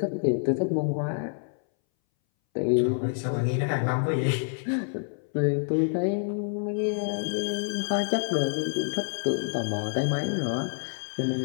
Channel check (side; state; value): right; silent; 60 dB below the other